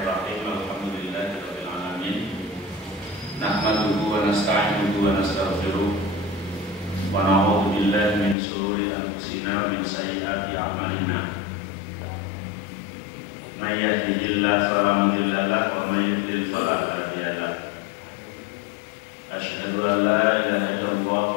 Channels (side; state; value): right; drops out; at 8.3 s